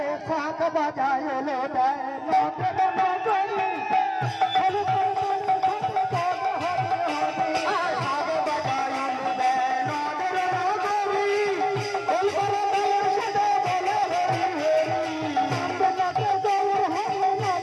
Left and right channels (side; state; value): both; identical; correlation 1.00